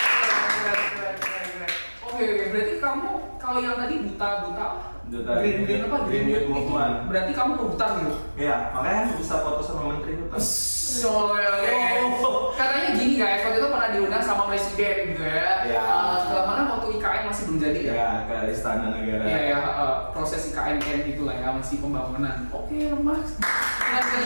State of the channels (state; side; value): inverted; both; correlation -1.00